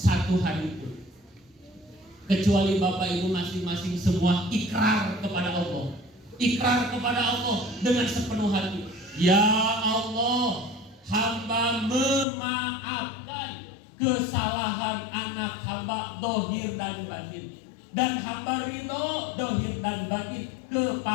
hari pun kecuali Bapak Ibu masing-masing semua ikrar kepada Allah. Ikrar kepada Allah dengan sepenuh hati. Ya Allah, hamba memaafkan kesalahan anak hamba dohir dan batin, dan hamba ridho dohir dan batin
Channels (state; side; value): drops out; right; at 12.2 s